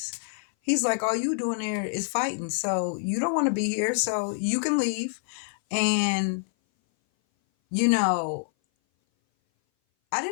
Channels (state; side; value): silent; right; 58 dB below the other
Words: He's like, all you doing there is fighting, so you don't want to be here, so you can leave. And you know I